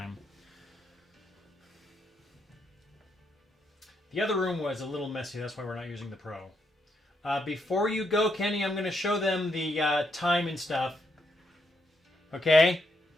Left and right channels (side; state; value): both; normal; correlation 0.78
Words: The other room was a little messy. That's why we're not using the Pro. Before you go, Kenny, I'm going to show them the time and stuff. Okay?